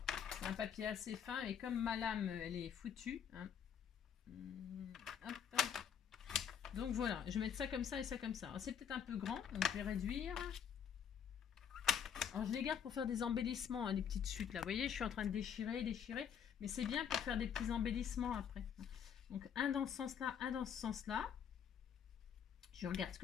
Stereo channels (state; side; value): quieter; right; 8.0 dB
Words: C'est un papier assez fin et comme ma lame elle est foutue. Hein. Hop. Donc voilà, je vais mettre ça comme ça et ça comme ça. C'est peut-être un peu grand, donc je vais réduire. Alors je les garde pour faire des embellissements, hein, des petites chutes là. Vous voyez, je suis en train de déchirer. Mais c'est bien pour faire des petits embellissements après. Donc un dans ce sens-là, un dans ce sens-là. Je regarde ce